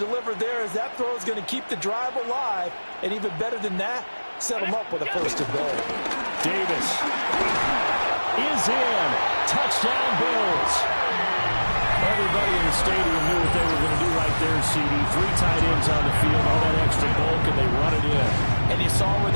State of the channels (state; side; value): inverted; both; correlation -1.00